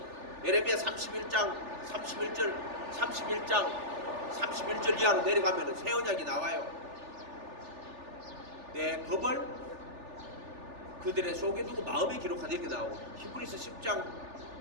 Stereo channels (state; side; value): late; left; 3.4 ms